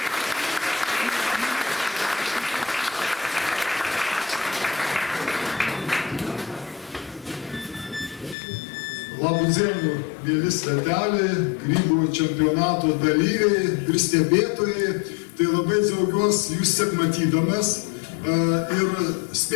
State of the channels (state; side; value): drops out; right; at 8.3 s